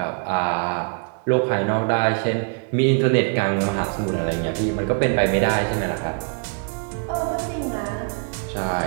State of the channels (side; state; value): left; quieter; 39.7 dB